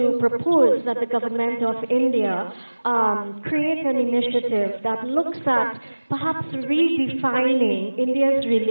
propose that the government of India create an initiative that looks at perhaps redefining India's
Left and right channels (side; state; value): both; inverted; correlation -1.00